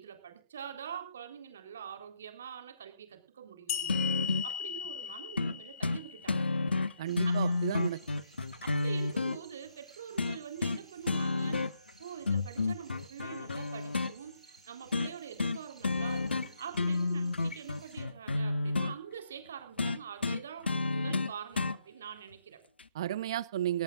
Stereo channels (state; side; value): inverted; both; correlation -0.76